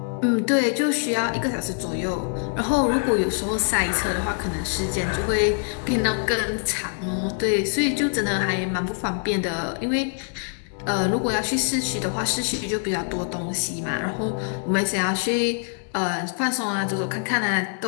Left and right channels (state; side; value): silent; right; 59 dB below the other